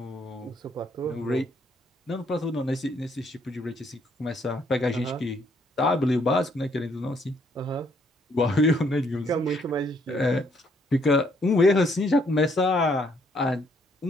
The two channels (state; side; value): normal; both; correlation 0.68